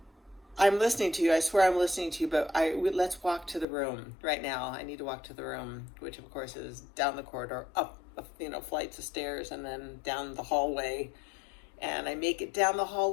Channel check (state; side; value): drops out; right; at 3.7 s